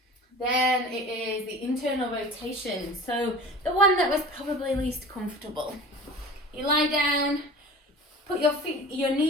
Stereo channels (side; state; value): both; normal; correlation 0.39